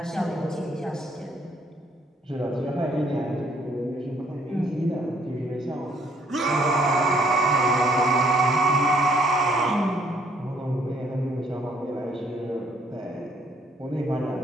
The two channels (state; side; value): normal; both; correlation 0.66